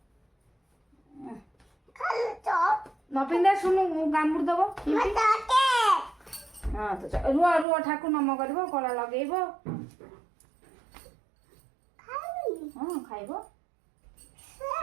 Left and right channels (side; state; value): left; drops out; at 7.7 s